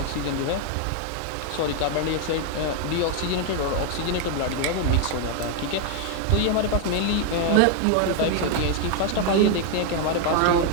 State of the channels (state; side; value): different; both; correlation 0.01